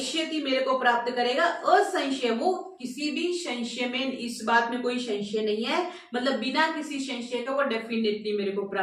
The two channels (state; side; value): identical; both; correlation 1.00